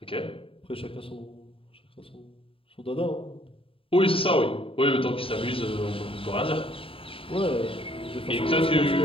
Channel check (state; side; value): late; right; 0.26 ms